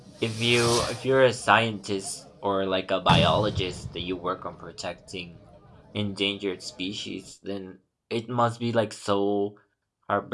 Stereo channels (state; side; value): identical; both; correlation 1.00